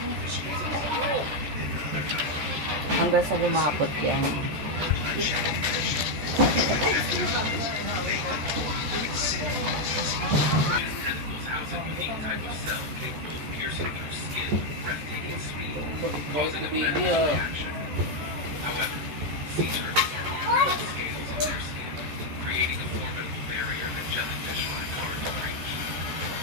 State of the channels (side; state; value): left; late; 13 ms